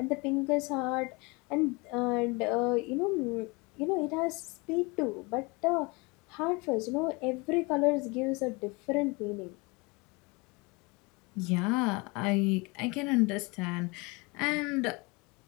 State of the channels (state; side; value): quieter; right; 27.2 dB